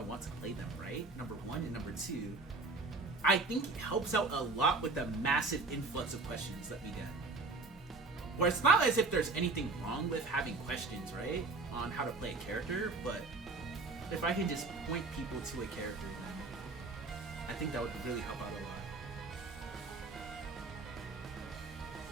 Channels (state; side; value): quieter; left; 3.6 dB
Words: want to play them, right? Number one, and number two, I think it helps out a lot with the massive influx of questions that we get. Or it's not as if there's anything wrong with having questions, right? On how to play a character, but if I can just point people to a character, then I think that would really help out a lot.